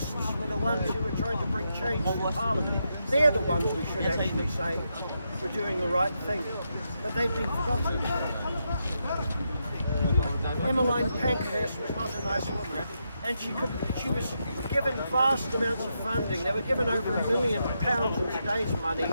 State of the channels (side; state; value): both; inverted; correlation -0.83